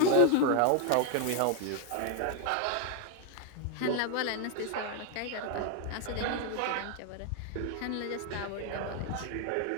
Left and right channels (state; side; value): different; both; correlation 0.00